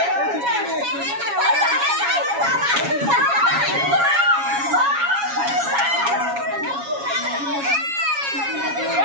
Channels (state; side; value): late; left; 7.2 ms